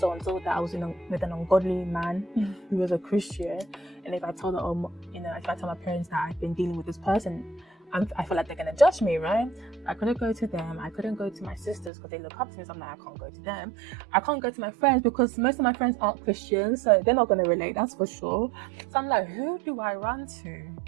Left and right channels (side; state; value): left; drops out; at 11.9 s